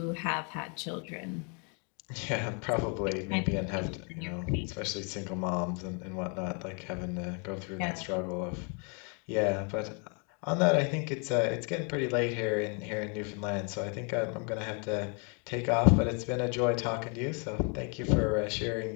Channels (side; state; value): right; quieter; 37.0 dB